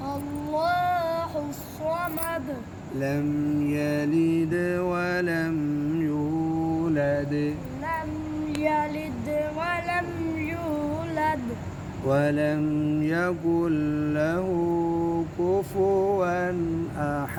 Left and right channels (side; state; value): both; identical; correlation 1.00